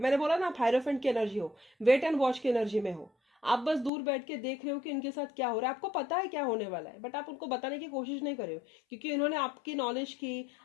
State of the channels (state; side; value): drops out; right; at 3.9 s